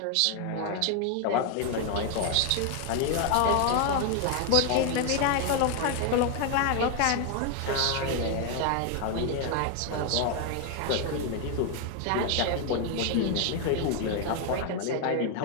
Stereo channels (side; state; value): both; different; correlation 0.01